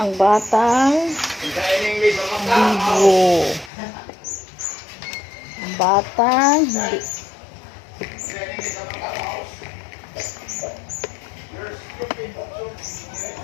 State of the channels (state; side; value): drops out; right; at 3.7 s